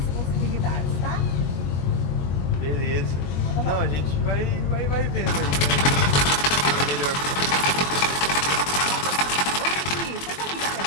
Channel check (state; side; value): late; right; 21 ms